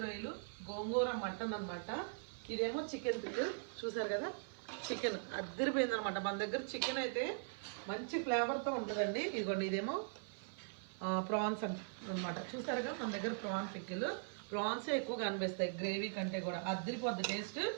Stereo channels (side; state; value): left; silent; 51 dB below the other